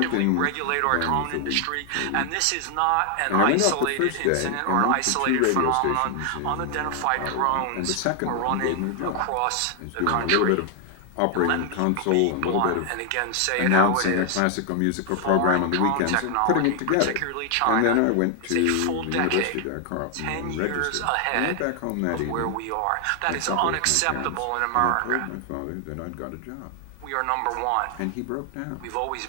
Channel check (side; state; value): both; different; correlation 0.00